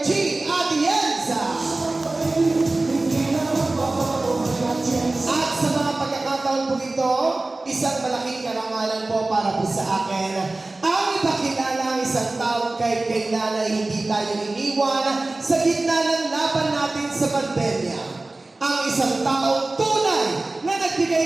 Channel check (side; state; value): left; quieter; 3.0 dB